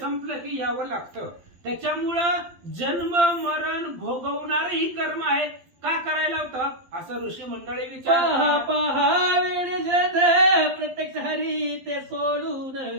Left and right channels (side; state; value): left; late; 12 ms